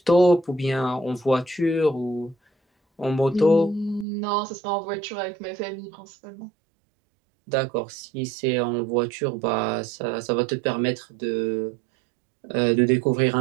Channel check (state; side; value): drops out; left; at 4.0 s